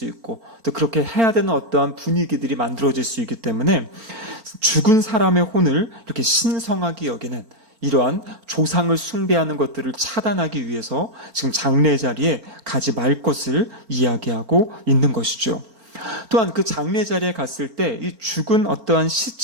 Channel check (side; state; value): left; late; 4.4 ms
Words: 있고 또 그렇게 해야 되는 어떠한 분위기들이 만들어질 수 있기 때문에 죽은 사람의 혼을 이렇게 신성하게 여기는 이러한 조상을 숭배하는 것들을 차단하기 위해서 지금 장례 자리에 가지 말 것을 이야기하고 있는 것이죠. 또한 그 장례 자리에 갔을 때 이 죽은 어떠한